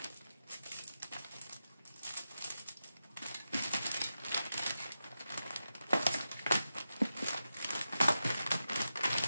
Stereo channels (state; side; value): inverted; both; correlation -0.91